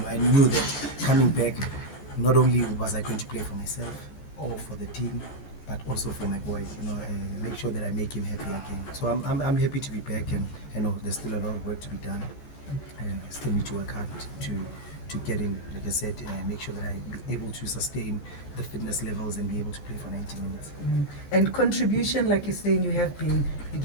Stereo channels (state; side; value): late; right; 14 ms